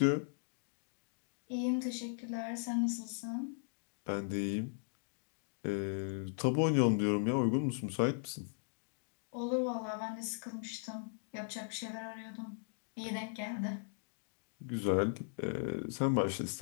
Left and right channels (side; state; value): right; silent; digital silence